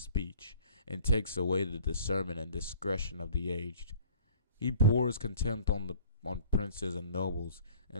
and takes away the discernment and discretion of the aged. He pours contempt on princes and nobles,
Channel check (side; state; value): both; inverted; correlation -0.50